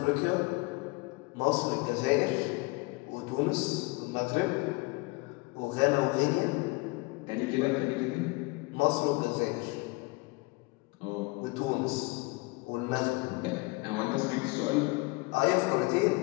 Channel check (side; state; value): right; quieter; 25.5 dB